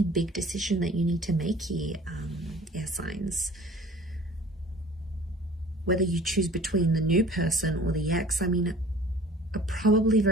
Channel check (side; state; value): both; normal; correlation 0.47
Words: big decision that you need to make here, air signs. Whether you choose between the new person or the ex, I mean, probably